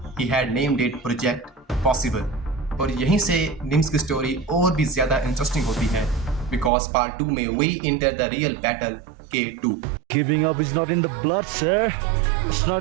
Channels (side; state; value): left; drops out; at 6.7 s